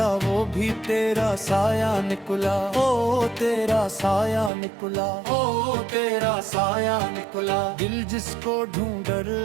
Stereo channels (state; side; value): drops out; left; at 4.5 s